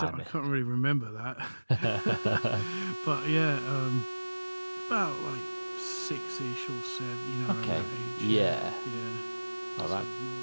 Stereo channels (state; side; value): inverted; both; correlation -1.00